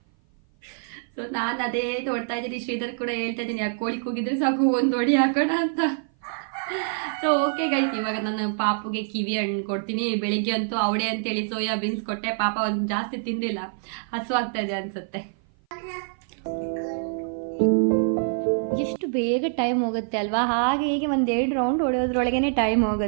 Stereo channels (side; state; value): left; silent; 56 dB below the other